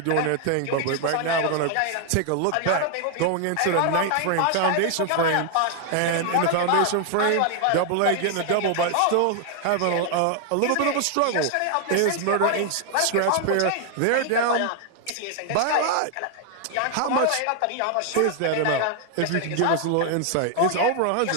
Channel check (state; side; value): different; both; correlation 0.00